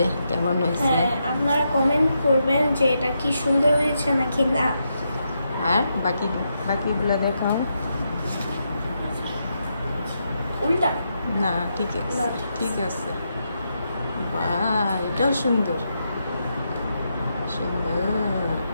কেমন হয়েছে। হ্যাঁ, আপনারা কমেন্ট করবেন যে এটা কি সুন্দর হয়েছে নাকি না। আর বাকিগুলো দেখাও। উল্টা না ঠিক আছে, না, ঠিক আছে। বাহ, এটাও সুন্দর সুন্দর।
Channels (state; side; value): inverted; both; correlation -0.83